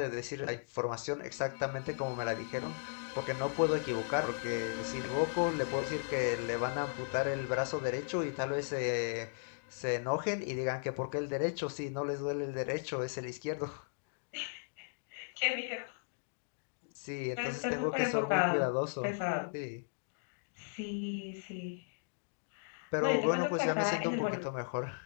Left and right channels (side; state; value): right; silent; digital silence